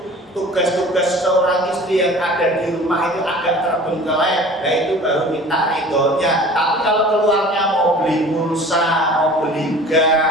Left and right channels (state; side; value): normal; both; correlation 0.44